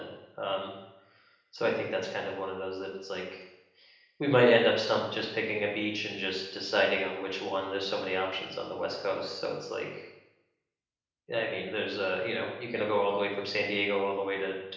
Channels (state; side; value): identical; both; correlation 1.00